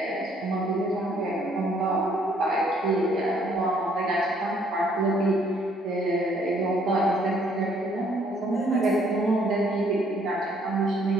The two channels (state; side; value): normal; both; correlation 0.64